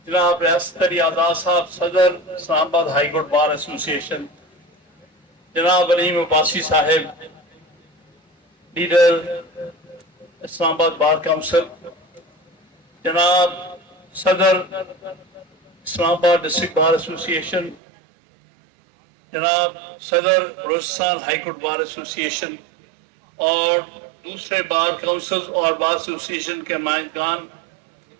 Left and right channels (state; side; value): drops out; left; at 17.8 s